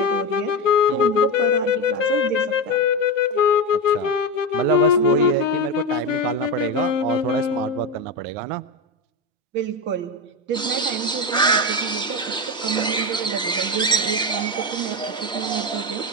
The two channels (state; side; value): normal; both; correlation 0.15